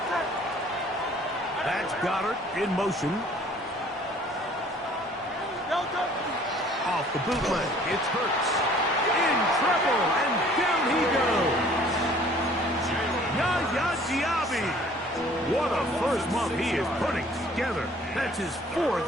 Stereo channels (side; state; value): both; normal; correlation 0.54